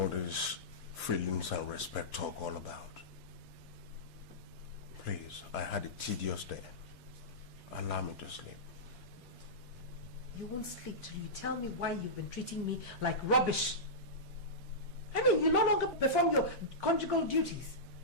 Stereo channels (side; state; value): both; normal; correlation -0.15